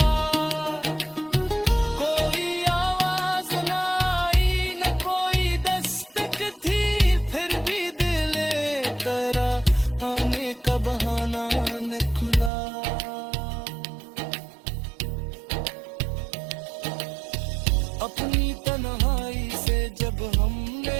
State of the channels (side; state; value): left; drops out; at 12.5 s